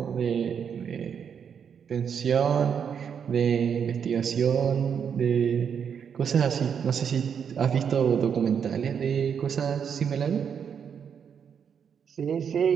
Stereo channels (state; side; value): quieter; left; 7.4 dB